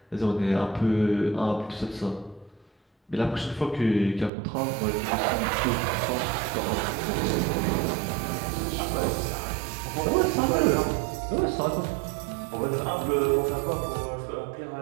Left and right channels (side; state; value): left; drops out; at 4.3 s